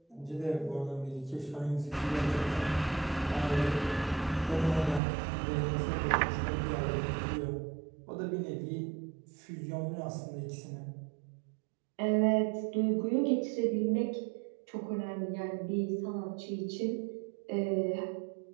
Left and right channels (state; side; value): drops out; left; at 5.0 s